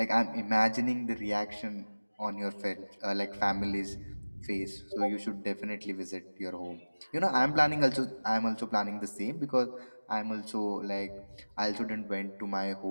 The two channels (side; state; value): both; inverted; correlation -1.00